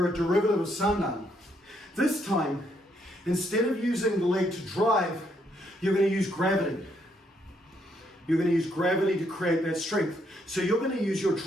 a derivative of sandan. This time, instead of using the leg to drive, you're going to use gravity. You're going to use gravity to create that strength. So you're going to use your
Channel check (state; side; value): normal; both; correlation 0.73